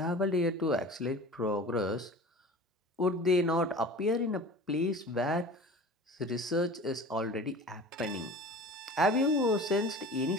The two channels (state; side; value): normal; both; correlation 0.39